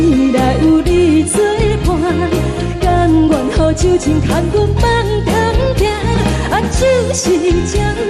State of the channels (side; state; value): both; identical; correlation 1.00